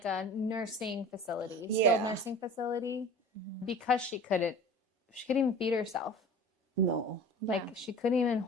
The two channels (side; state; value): both; normal; correlation 0.40